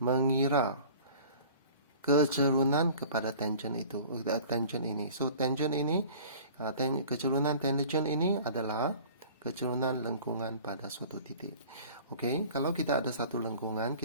mengira kecerunan kepada tangen itu, tangen ini. So, tangen ini, kecerunan tangen ini adalah kecerunan lengkungan pada suatu titik. Okey, kalau kita ada satu lengkungan,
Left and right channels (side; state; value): both; inverted; correlation -0.45